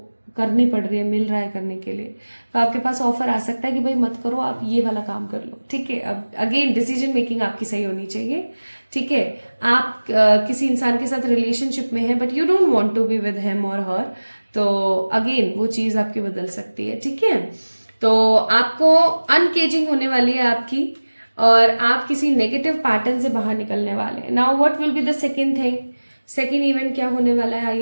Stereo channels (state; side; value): inverted; both; correlation -1.00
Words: पड़ रही है, मिल रहा है करने के लिए, तो आपके पास ऑफर आ सकता है कि भाई मत करो, आप ये वाला काम कर लो, ठीक है। अब अगेन डिसीजन मेकिंग आपकी सही होनी चाहिए, ठीक है। आप किसी इंसान के साथ रिलेशनशिप में है but you don't want to be with him और हर, तो अगेन वो चीज आपकी बदल सकती है, ठीक है। तो आपको अनकेजिंग होने वाली है आपकी, और आप किसी नेगेटिव पैटर्न से बाहर निकलने वाले हैं। Now what will be the second thing, second event क्या होने वाला है,